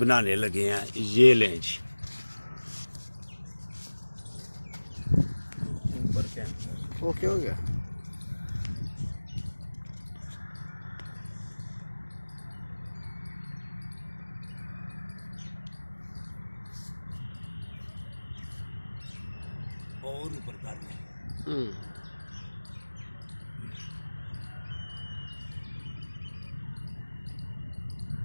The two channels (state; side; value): inverted; both; correlation -1.00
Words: लगे हैं। ये लें जी, ऊपर कैमरा ओके हो गया। और ऊपर कर लें।